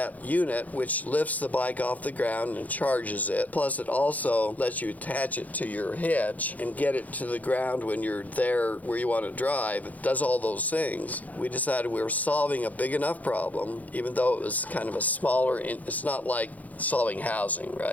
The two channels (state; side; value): late; right; 0.077 ms